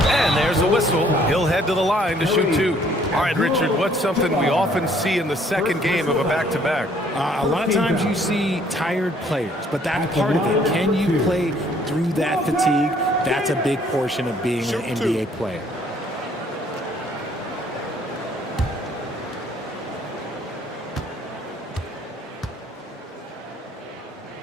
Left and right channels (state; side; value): normal; both; correlation 0.62